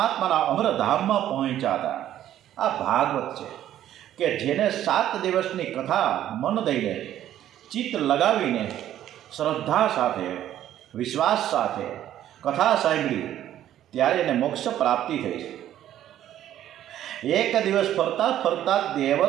અમરધામમાં પહોંચ્યા હતા. આ ભાગવત છે કે જેને 7 દિવસની કથા મન દઈને, ચિત્ત લગાવીને, શ્રદ્ધા સાથે, વિશ્વાસ સાથે કથા સાંભળી ત્યારે એને મોક્ષ પ્રાપ્તિ થઈ છે. એક દિવસ ફરતા ફરતા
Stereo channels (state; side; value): quieter; left; 11.9 dB